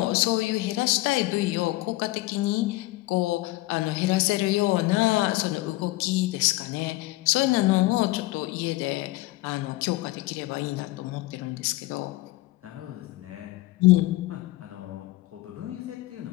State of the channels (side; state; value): right; quieter; 19.2 dB